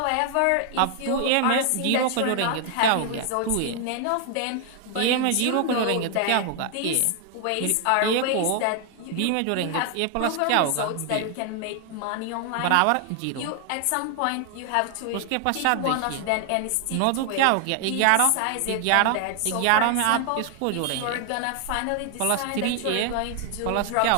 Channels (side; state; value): both; different; correlation 0.00